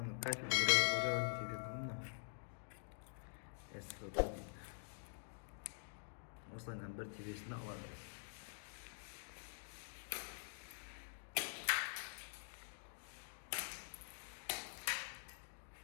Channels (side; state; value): right; silent; digital silence